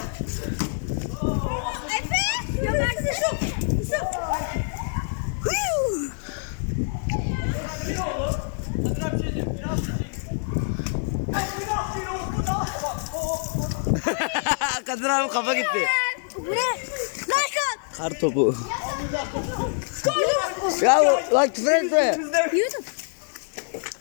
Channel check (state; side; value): silent; right; 56 dB below the other